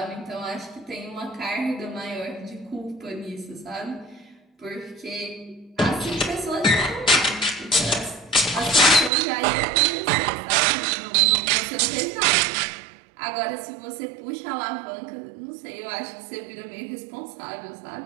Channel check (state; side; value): drops out; left; at 9.1 s